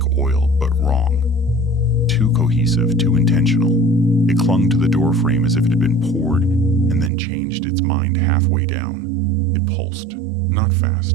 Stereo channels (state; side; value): drops out; left; at 7.1 s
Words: oil, but wrong. Too cohesive, too intentional. It clung to the door frame as if it had been poured and then changed its mind halfway down. It pulsed, not